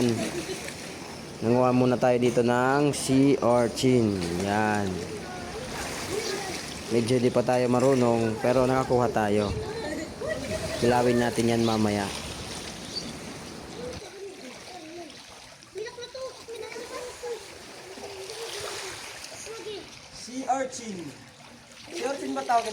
Nanguha muna tayo dito ng sea urchin. Yan. Medyo di pa tayo marunong pero nakakuha tayo. Kilawin natin yan mamaya. Sea urchin. Sea urchin ba tawag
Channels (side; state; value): both; identical; correlation 1.00